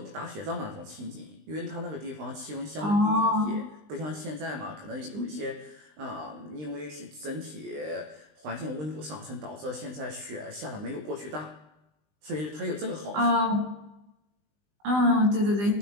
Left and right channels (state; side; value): late; left; 20 ms